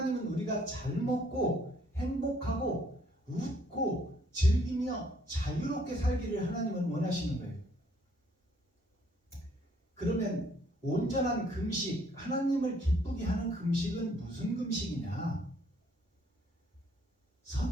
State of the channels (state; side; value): normal; both; correlation 0.65